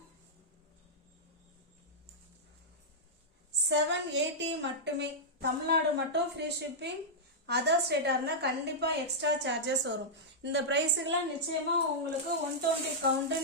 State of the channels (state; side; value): normal; both; correlation -0.09